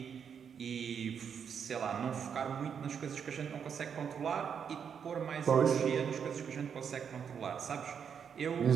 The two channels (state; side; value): quieter; left; 7.3 dB